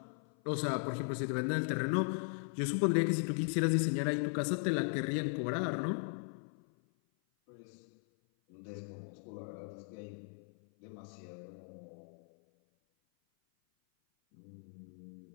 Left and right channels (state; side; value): silent; right; 53 dB below the other